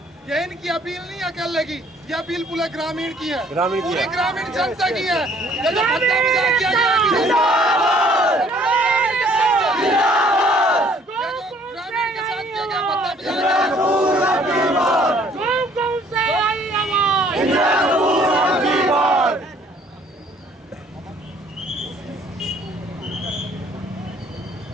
ये इनकी अपील नहीं है अकेले की, ये अपील पूरे ग्रामीण की है, पूरी ग्रामीण जनता की है। ये जो भत्ता मजाक किया गया है, ग्रामीण के साथ किया गया भत्ता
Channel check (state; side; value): normal; both; correlation 0.59